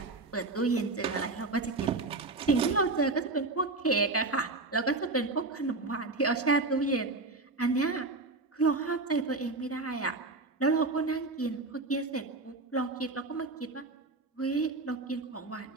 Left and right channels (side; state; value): left; quieter; 3.3 dB